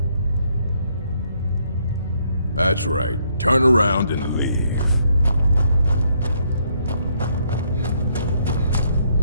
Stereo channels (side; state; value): both; inverted; correlation -0.70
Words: That's right. Turn around and leave.